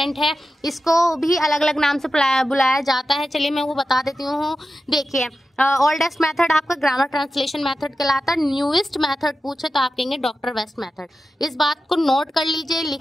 है, इसको भी अलग अलग नाम से बुलाया जाता है। चलिए मैं वो बता देती हूँ। देखिए, ओल्डेस्ट मेथड आपका ग्रामर ट्रांसलेशन मेथड कहलाता है। न्यूएस्ट मेथड पूछे तो आप कहेंगे डॉक्टर वेस्ट मेथड। इस बात को नोट कर लीजिए,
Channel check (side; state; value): both; normal; correlation 0.92